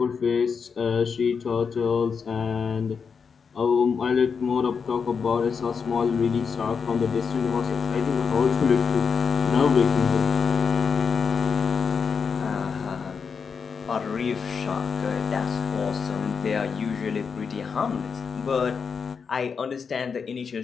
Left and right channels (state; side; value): quieter; right; 5.9 dB